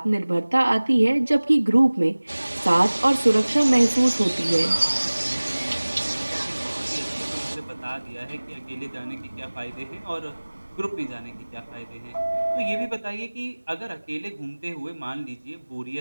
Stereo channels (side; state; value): both; inverted; correlation -1.00